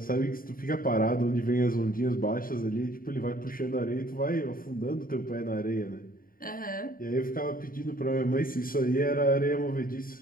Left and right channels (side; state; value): right; late; 0.41 ms